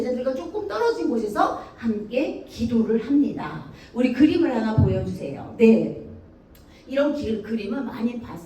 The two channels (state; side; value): identical; both; correlation 1.00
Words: 조금 떨어진 곳에서 함께 기도를 합니다. 우리 그림을 하나 보여주세요. 네. 이런 그림은 많이